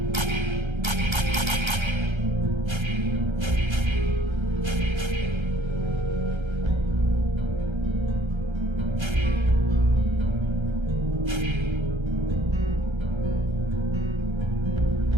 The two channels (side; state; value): left; late; 1.3 ms